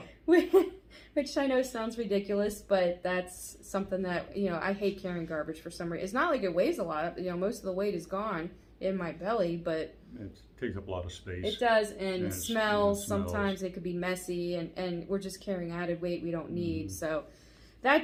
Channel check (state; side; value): identical; both; correlation 1.00